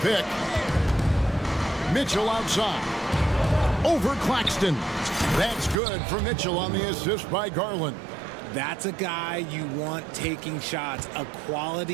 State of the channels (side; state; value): left; drops out; at 5.8 s